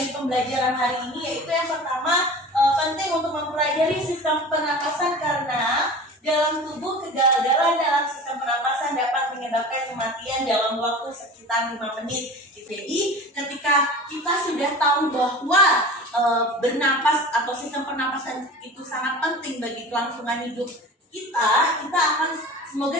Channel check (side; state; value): both; normal; correlation 0.37